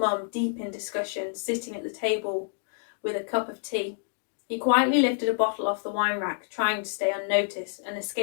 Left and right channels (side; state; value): right; silent; digital silence